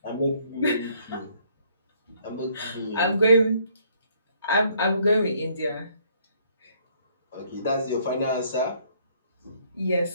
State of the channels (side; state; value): both; inverted; correlation -0.64